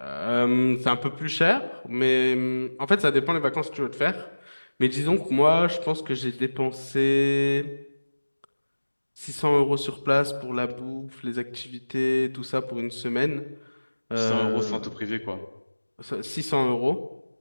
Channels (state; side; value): inverted; both; correlation -1.00